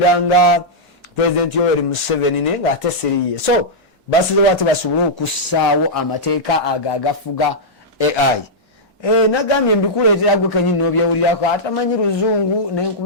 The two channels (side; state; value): both; normal; correlation -0.09